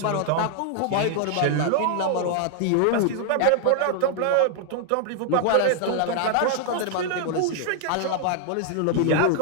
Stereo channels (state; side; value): different; both; correlation 0.00